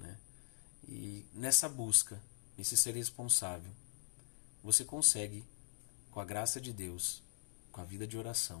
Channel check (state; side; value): silent; right; digital silence